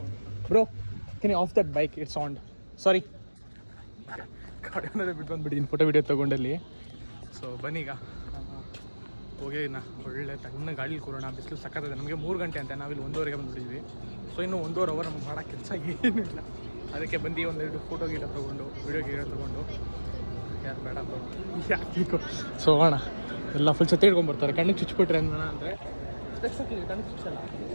Bro can you off that bike, it's on. Sorry, ಗಾಡಿ ಅನ್ನೋದೇ ಬಿಟ್ಟು ಬಂದುಬಿಟ್ಟಿದ್ದೀನಿ ಫೋಟೋ ವೀಡಿಯೋ ತೊಗೊಂಡಲ್ಲಿ. ಸೊ ಬನ್ನೀಗ ಹೋಗಿ ಒಳ್ಳೆ ತಣ್ಣ ಗಾಡಿ ಕೂರೋಣ. ಬಿಸಿಲು ಸಕ್ಕತ್ತದೆ. ನಮಗೆ 3 ಗಂಟೆ ಅಂತ, ನಾವಿಲ್ಲಿ 1:30ಗೆ ಬಂದುಬಿಟ್ಟಿದ್ವಿ. ಸೊ ಇನ್ನೂ 1.5 ಅವರ್ ನಮ್ಗೆ ಮಾಡೋ ಕೆಲಸ ಏನೂ ಇಲ್ಲ. ಅದಕ್ಕೆ ಬಂದು ಒಂದೆರಡು ಫೋಟೋ ಗೀಟ ತೊಗೊಂಡು ವೀಡಿಯೋ ತೊಗೊಂಡು ಯಾರು ಬೇಡ ಯಾಕೆ ಸೊ ಹೋಗೋಣ. ಎಲ್ಲ ಫುಲ್ ಛತ್ತಿ ಹಿಡ್ಕೊಂಡ್ಬರ್ತಾರೆ, ಕಣ್ಣಿಗೆ ಚುಚ್ಚಿಬಿಟ್ರೆ ಅಂದರೆ ಸ್ಪೆಕ್ಸ್ ಹಾಕಿದ್ವಿ, ಕಣ್ಣಿಗೆ ಚುಚ್ಚಲ್ಲ.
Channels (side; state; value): both; inverted; correlation -1.00